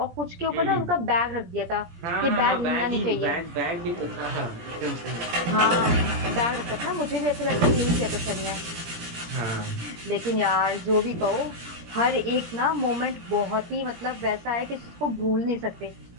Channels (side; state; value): left; late; 17 ms